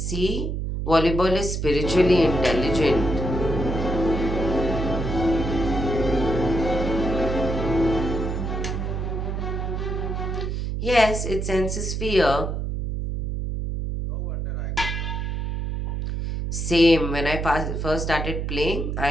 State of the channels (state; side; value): noise; right; hum, 2 dB below the sound